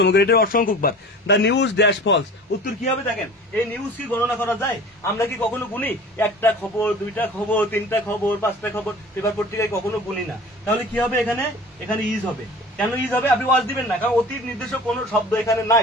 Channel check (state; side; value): normal; both; correlation 0.41